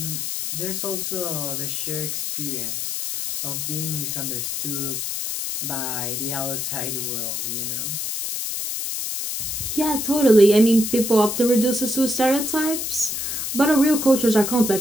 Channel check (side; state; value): left; noise; hiss, 3 dB below the sound